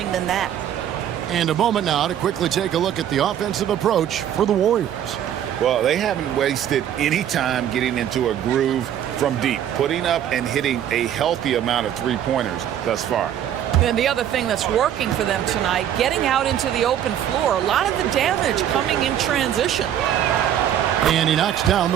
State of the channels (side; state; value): left; quieter; 10.4 dB